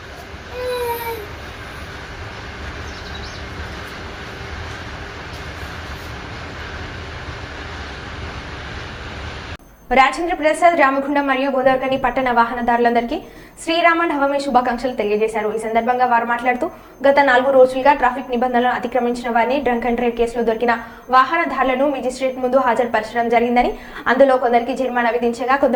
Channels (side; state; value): both; identical; correlation 1.00